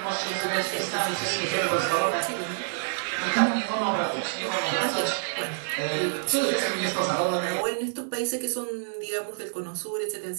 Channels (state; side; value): silent; left; digital silence